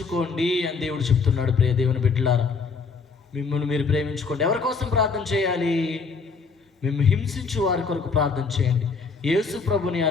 అని దేవుడు చెప్తున్నాడు. ప్రియ దేవుని బిడ్డలారా, మిమ్మల్ని మీరు ప్రేమించుకోండి. ఎవరి కోసం ప్రార్థన చేయాలి? మేము హింసించు వారి కొరకు ప్రార్థన చేయండి. యేసు ప్రభుని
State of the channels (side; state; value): right; quieter; 4.8 dB